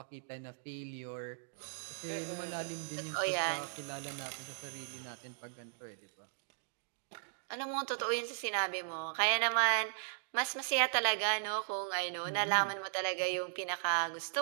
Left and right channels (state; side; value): silent; left; digital silence